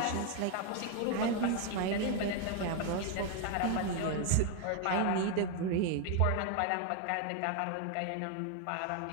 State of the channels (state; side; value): different; both; correlation 0.01